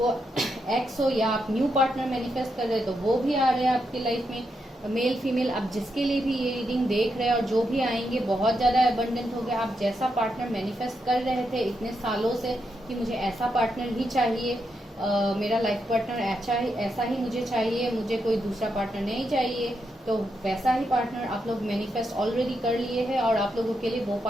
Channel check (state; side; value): normal; both; correlation 0.83